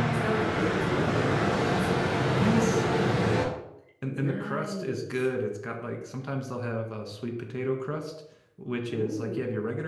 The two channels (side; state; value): both; identical; correlation 1.00